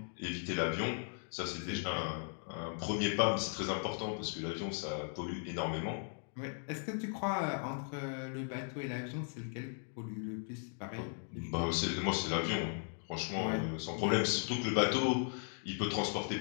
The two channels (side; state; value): right; silent; 53 dB below the other